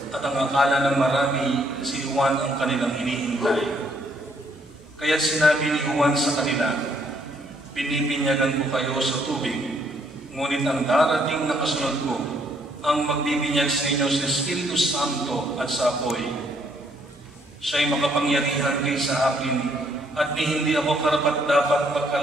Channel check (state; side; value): normal; both; correlation 0.68